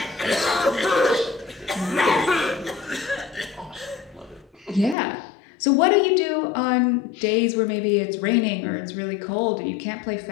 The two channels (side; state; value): right; drops out; at 5.0 s